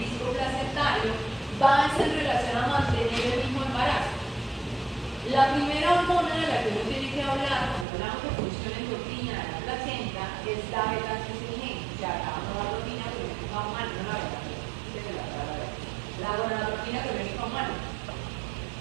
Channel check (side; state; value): left; drops out; at 7.9 s